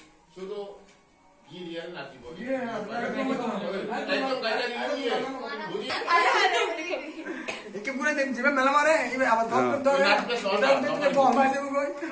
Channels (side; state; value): both; identical; correlation 1.00